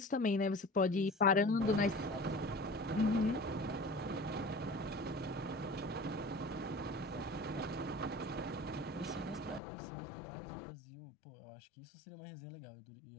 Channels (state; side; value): drops out; right; at 9.6 s